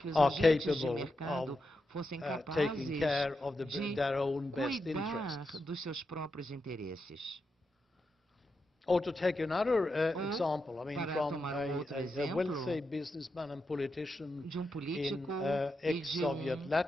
are capable of taking care of their own best interests. dos seus próprios interesses. Or to take another example, I mean, from a wealthy businessman and politician in ex-Soviet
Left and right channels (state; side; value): normal; both; correlation 0.86